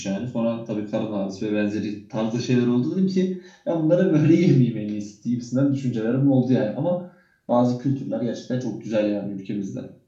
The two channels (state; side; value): identical; both; correlation 1.00